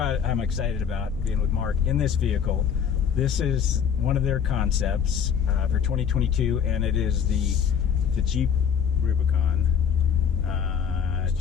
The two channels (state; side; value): quieter; right; 7.5 dB